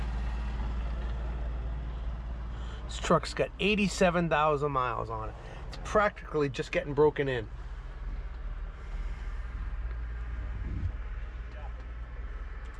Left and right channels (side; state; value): both; identical; correlation 1.00